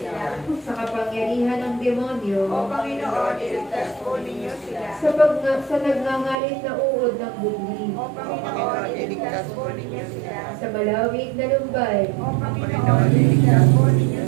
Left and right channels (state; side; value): drops out; left; at 6.4 s